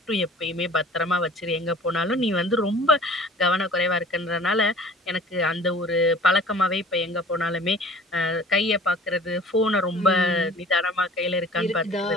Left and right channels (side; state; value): both; normal; correlation 0.46